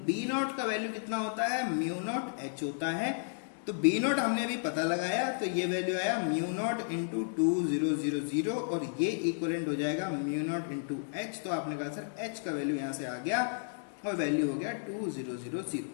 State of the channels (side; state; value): right; silent; digital silence